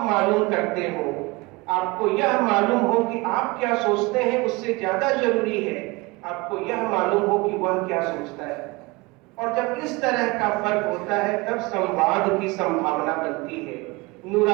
मालूम करते हो, आपको यह मालूम हो कि आप क्या सोचते हैं, उससे ज्यादा जरूरी है आपको यह मालूम हो कि वह क्या सोचता है। और जब इस तरह का फर्क होता है तब संवाद की संभावना बनती है।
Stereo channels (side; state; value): left; quieter; 24.4 dB